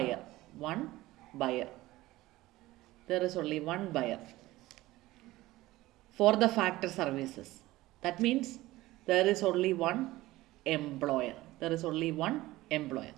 One buyer. There is only one buyer for the factor services. That means there is only one employer. There is only one employer.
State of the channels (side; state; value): left; quieter; 17.8 dB